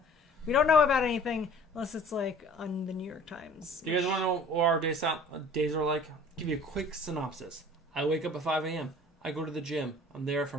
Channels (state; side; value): normal; both; correlation 0.49